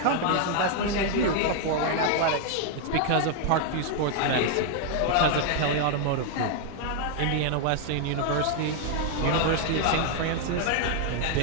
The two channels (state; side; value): different; both; correlation 0.00